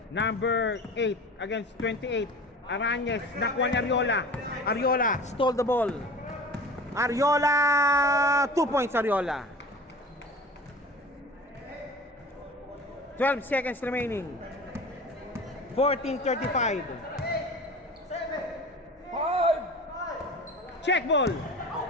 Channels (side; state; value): both; normal; correlation 0.38